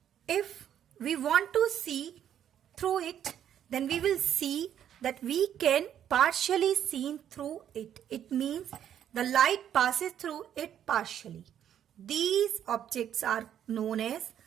If we want to see through it, then we will see that we can partially see through it. It means the light passes through it partially. These objects are known as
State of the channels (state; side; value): quieter; left; 9.9 dB